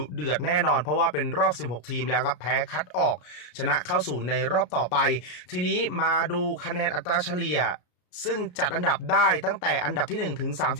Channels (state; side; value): late; right; 33 ms